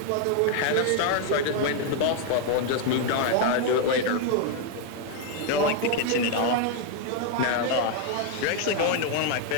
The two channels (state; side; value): different; both; correlation 0.00